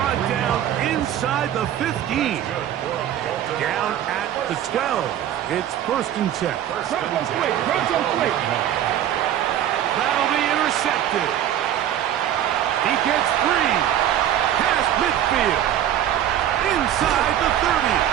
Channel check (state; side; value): quieter; left; 11.1 dB